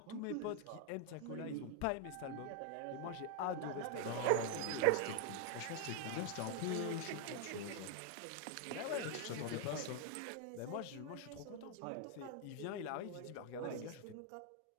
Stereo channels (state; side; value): different; both; correlation 0.00